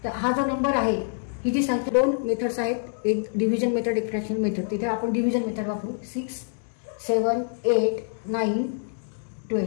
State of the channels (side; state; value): right; silent; digital silence